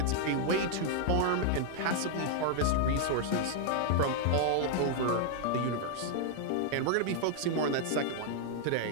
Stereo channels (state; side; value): different; both; correlation 0.00